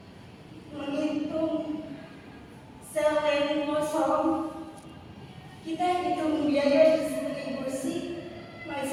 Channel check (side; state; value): both; identical; correlation 1.00